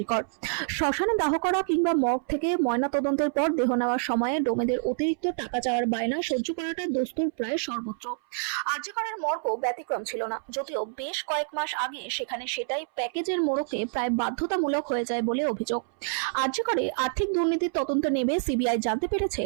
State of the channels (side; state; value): left; silent; 60 dB below the other